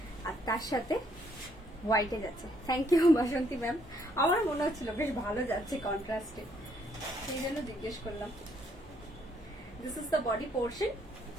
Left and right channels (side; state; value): both; normal; correlation 0.69